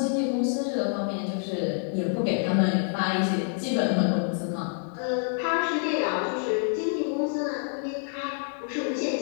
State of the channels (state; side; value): silent; right; 58 dB below the other